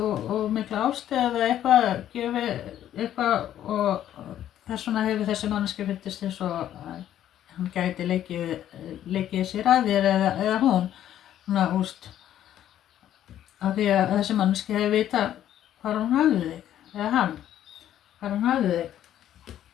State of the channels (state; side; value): quieter; right; 11.4 dB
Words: mikla ástæð eða eitthvað gefið eitthvað og þess vegna hefur þessi manneskja fundist eins og hann gæti leikið sér að þér eða hún svona úst af því að þessi manneskja hefur vitað hvar hún hafði þig eða hann hvar hún hafði þig